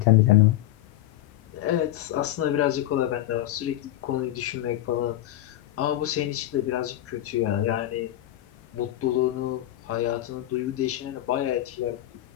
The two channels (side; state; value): right; quieter; 13.9 dB